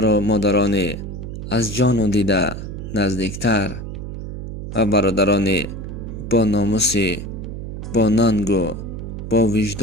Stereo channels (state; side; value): noise; right; hum, 8 dB below the sound